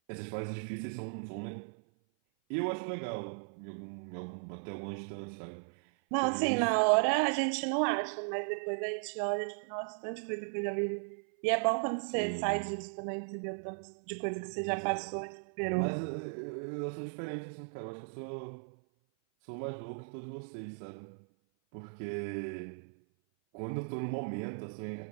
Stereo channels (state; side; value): silent; left; 54 dB below the other